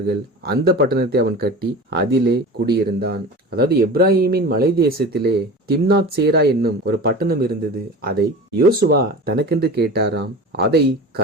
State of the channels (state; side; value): normal; both; correlation 0.34